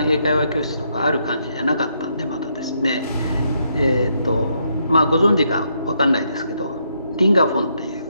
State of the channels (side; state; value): both; inverted; correlation -0.76